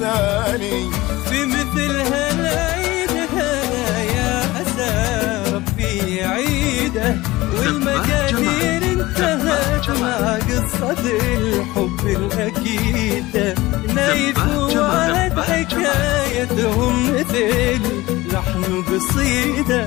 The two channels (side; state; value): right; quieter; 19.2 dB